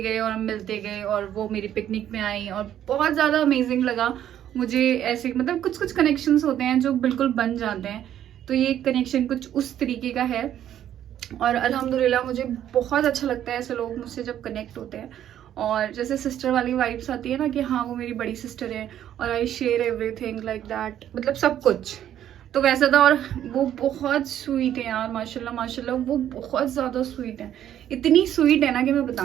गए और हम मिलते गए और वो मेरी पिकनिक में आई और बहुत ज़्यादा अमेजिंग लगा मुझे। ऐसे मतलब कुछ कुछ कनेक्शंस होते हैं जो बिल्कुल बन जाते हैं, तो ये कनेक्शन कुछ उस तरीके का है और अल्हम्दुलिल्लाह मुझे बहुत अच्छा लगता है ऐसे लोग मुझसे जब कनेक्ट होते हैं। और जैसे सिस्टर वाली वाइब्स आती है ना कि हाँ वो मेरी बड़ी सिस्टर है और I share everything like that, मतलब सब कुछ तो वैसा था। और वो बहुत स्वीट है यार, माशाल्लाह माशाल्लाह, वो बहुत ज़्यादा स्वीट है, इतनी स्वीट है ना कि मैं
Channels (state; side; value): quieter; left; 10.9 dB